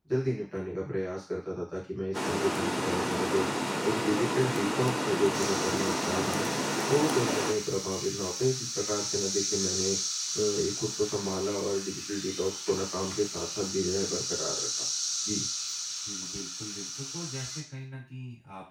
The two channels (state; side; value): identical; both; correlation 1.00